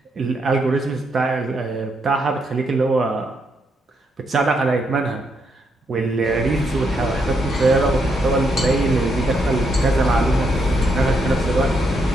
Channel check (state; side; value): normal; both; correlation 0.78